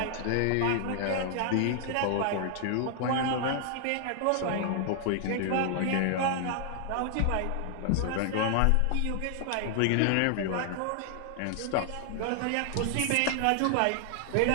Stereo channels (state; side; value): different; both; correlation 0.00